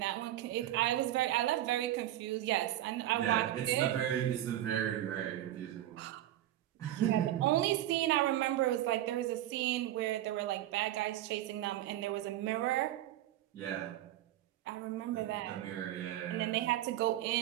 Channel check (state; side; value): quieter; left; 13.6 dB